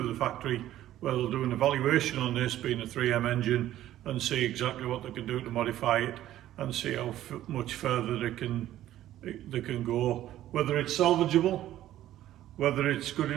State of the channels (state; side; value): quieter; left; 13.3 dB